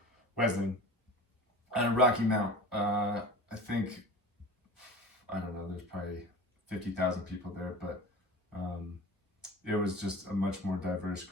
Wesleyan and Rocky Mount. I think, I don't know, there's probably 50,000 people there, but it was just a much more diverse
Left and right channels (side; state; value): both; normal; correlation 0.37